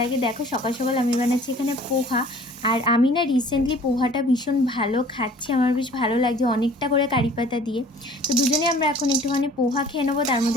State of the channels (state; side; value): normal; both; correlation 0.51